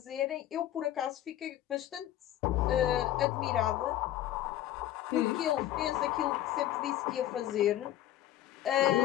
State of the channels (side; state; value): right; quieter; 13.1 dB